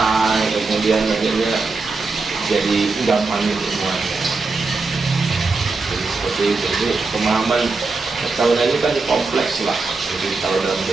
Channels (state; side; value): quieter; left; 3.9 dB